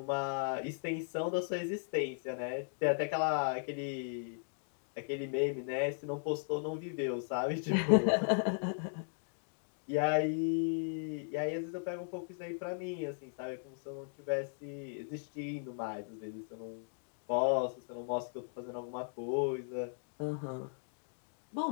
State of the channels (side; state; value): right; silent; digital silence